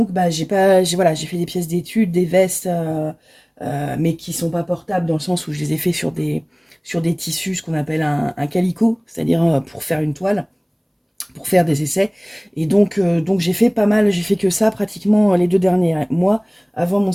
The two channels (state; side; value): identical; both; correlation 1.00